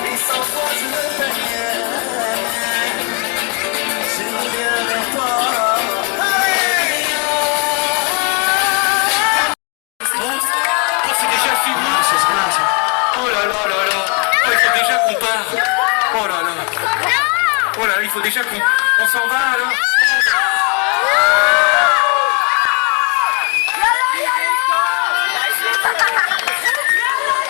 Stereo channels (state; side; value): quieter; right; 34.6 dB